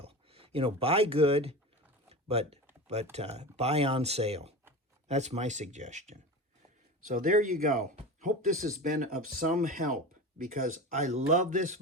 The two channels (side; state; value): both; normal; correlation 0.29